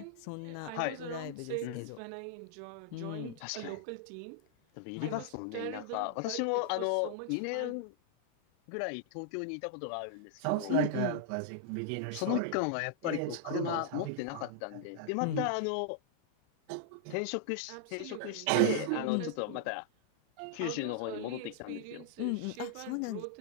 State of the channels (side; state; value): both; different; correlation -0.01